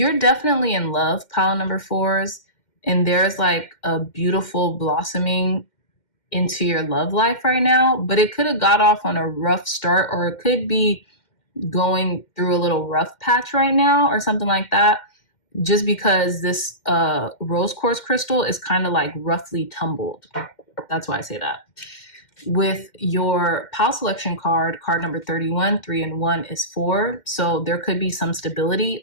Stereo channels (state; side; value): late; right; 2.1 ms